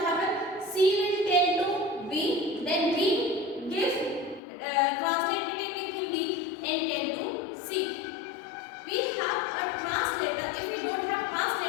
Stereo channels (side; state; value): right; drops out; at 4.4 s